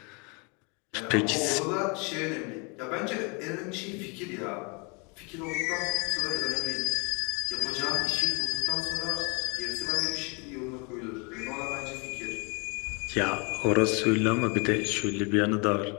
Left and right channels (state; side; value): quieter; right; 32.2 dB